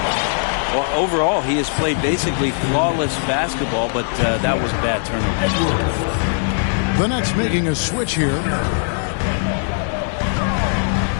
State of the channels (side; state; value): right; silent; digital silence